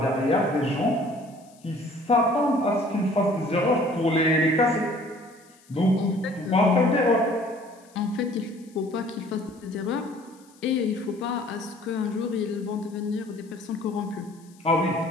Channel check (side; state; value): left; noise; hiss, 28 dB below the sound